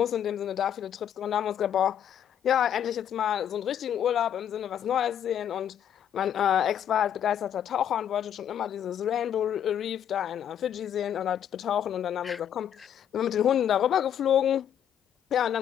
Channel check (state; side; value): quieter; right; 9.6 dB